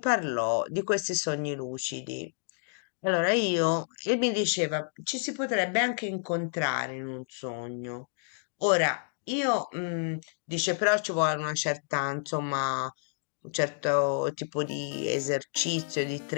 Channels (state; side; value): silent; right; digital silence